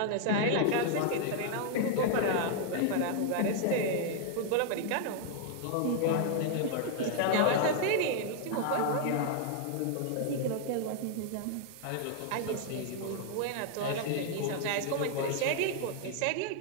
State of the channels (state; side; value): different; both; correlation 0.00